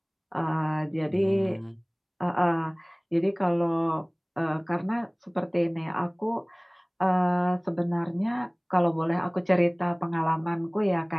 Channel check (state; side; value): identical; both; correlation 1.00